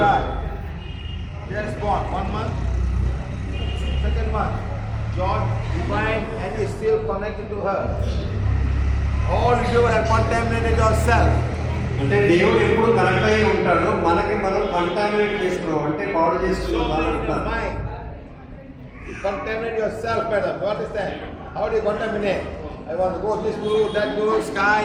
Just born 1 month, second month. God divine and is still connected to her. All you have contaminated yourself. అంటే దేవుడు ఎప్పుడు కనెక్ట్ అయి ఉంటాడు మనకి మనం కంటామినేట్ చేసుకున్నాం అంటే పాడు So చేసుకున్నాం in your mind. contaminate yourself, madam. You understand? How do you contaminate? I want to go this guru, that guru, sky,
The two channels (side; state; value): both; identical; correlation 1.00